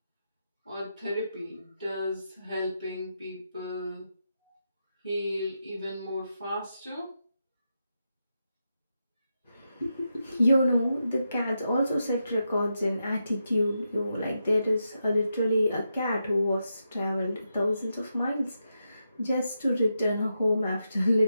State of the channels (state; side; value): inverted; both; correlation -0.86